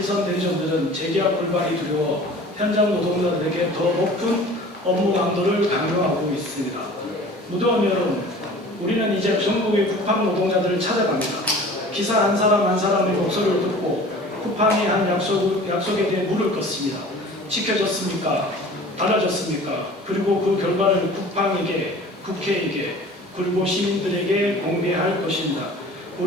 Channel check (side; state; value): both; normal; correlation 0.44